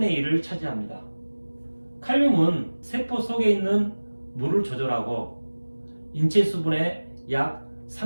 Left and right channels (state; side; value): inverted; both; correlation -1.00